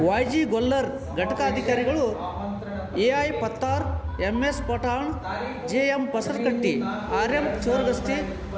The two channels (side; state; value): both; identical; correlation 1.00